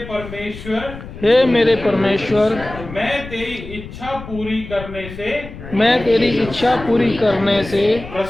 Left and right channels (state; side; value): noise; left; rumble, 13 dB below the sound